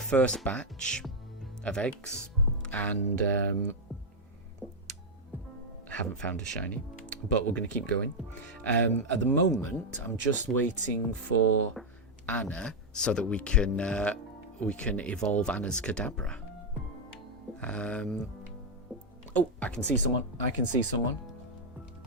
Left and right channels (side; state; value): both; normal; correlation 0.01